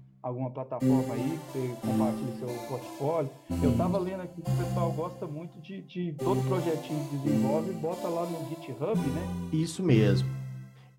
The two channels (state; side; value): identical; both; correlation 1.00